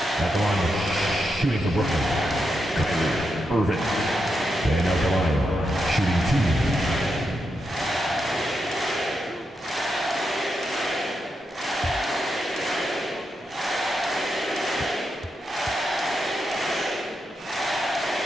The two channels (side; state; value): both; normal; correlation 0.85